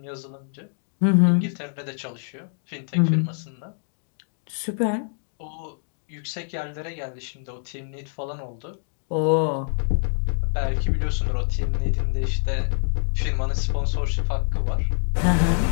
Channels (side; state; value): right; silent; digital silence